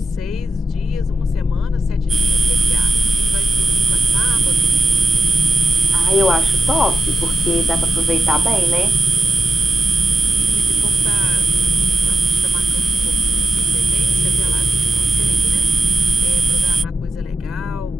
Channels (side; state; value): both; normal; correlation 0.87